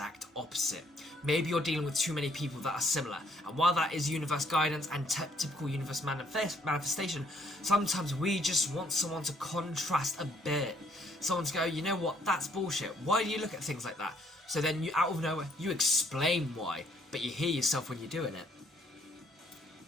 opposite. Maybe you're dealing with too many people that are similar, and while that is universe guidance and typical universe manifestation, sometimes we just want someone to contrast a bit. Someone to go, you know what, that's bullshit. Why do you look at things like that? So then you, out of nowhere, you explain why, but you hear yourself when you're doing it.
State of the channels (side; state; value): both; normal; correlation 0.67